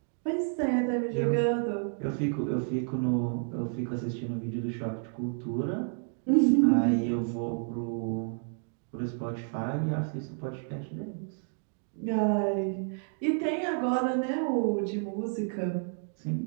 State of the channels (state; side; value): silent; left; 58 dB below the other